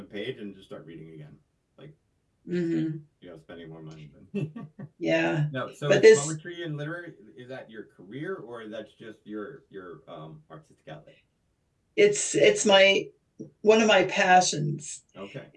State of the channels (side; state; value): both; identical; correlation 1.00